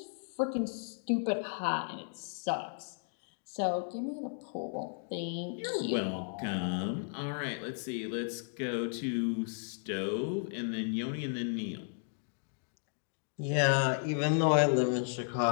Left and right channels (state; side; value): silent; right; digital silence